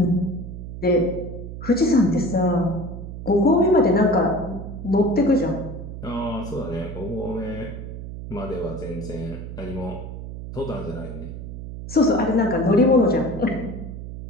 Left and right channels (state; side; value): noise; right; hum, 9 dB below the sound